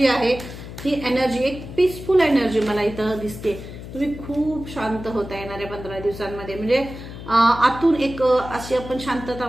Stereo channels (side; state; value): left; noise; hum, 12 dB below the sound